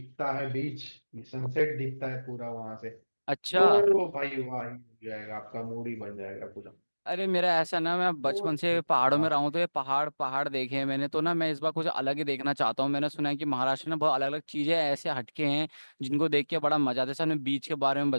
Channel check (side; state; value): both; inverted; correlation -1.00